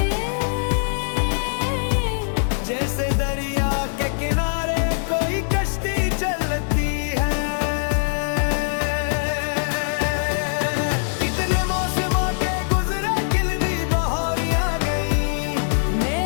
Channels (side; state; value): right; silent; digital silence